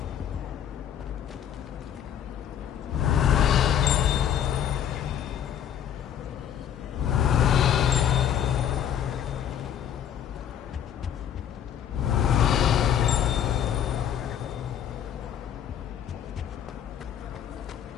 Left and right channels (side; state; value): right; quieter; 9.5 dB